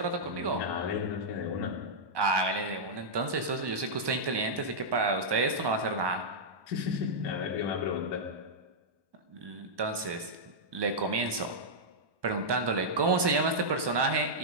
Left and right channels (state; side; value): late; left; 1.2 ms